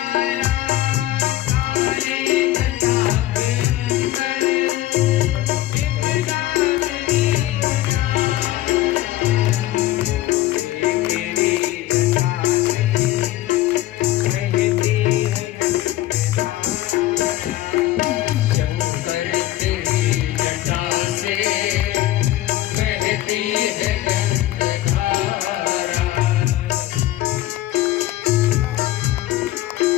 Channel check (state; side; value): quieter; right; 15.1 dB